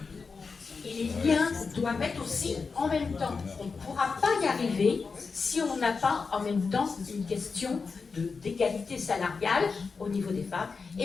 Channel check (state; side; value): quieter; right; 4.8 dB